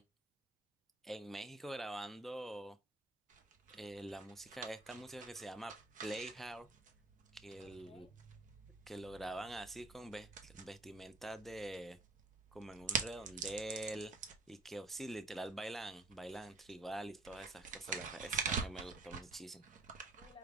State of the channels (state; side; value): quieter; left; 3.2 dB